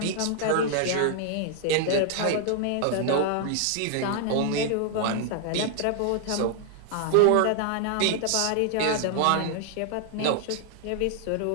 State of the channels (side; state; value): both; different; correlation 0.00